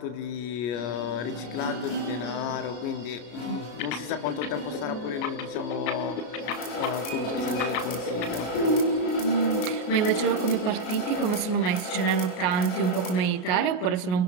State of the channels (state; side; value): late; right; 33 ms